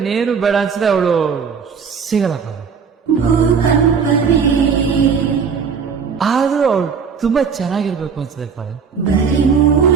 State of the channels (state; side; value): quieter; left; 6.2 dB